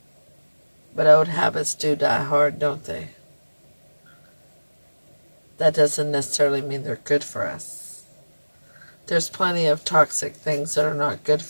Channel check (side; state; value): both; inverted; correlation -1.00